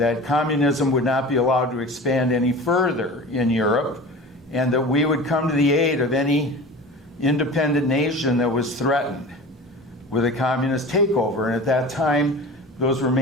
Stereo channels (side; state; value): both; normal; correlation 0.35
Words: communism would not be allowed to expand any further in Europe, and that we would come to the aid of any independent nation that was threatened with a communist takeover. And at that time, those were